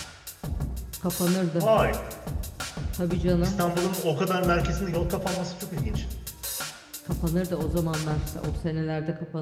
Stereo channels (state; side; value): identical; both; correlation 1.00